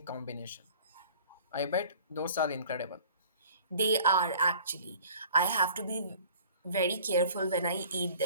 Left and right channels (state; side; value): inverted; both; correlation -0.49